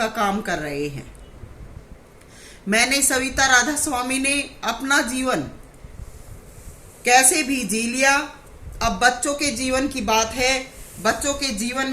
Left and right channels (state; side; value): identical; both; correlation 1.00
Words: काम कर रहे हैं। मैंने सविता राधा स्वामी ने अपना जीवन कैसे भी जी लिया। अब बच्चों के जीवन की बात है। बच्चों के जीवन